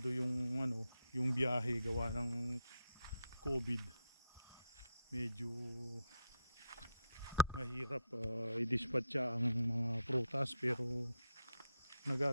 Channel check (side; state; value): both; inverted; correlation -0.77